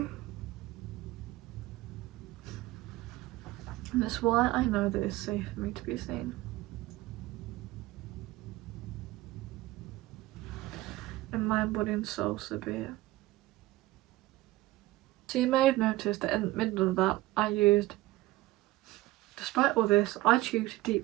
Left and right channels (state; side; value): quieter; left; 18.2 dB